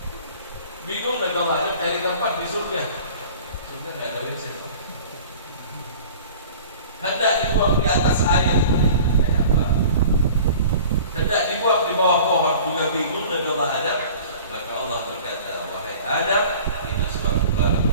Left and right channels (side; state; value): both; inverted; correlation -0.43